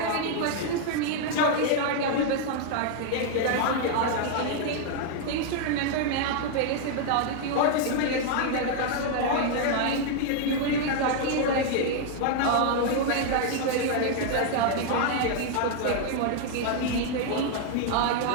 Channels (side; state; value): both; different; correlation 0.00